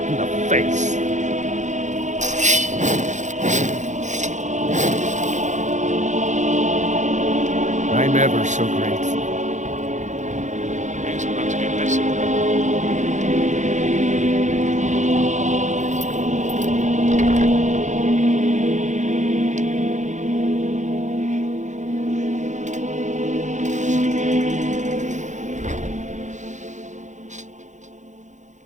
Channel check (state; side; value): late; left; 0.35 ms